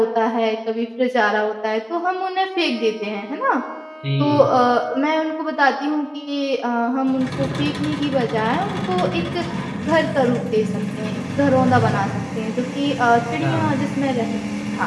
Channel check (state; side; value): identical; both; correlation 1.00